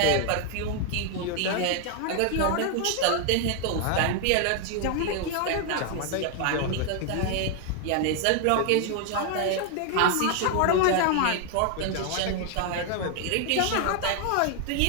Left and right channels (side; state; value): both; different; correlation 0.00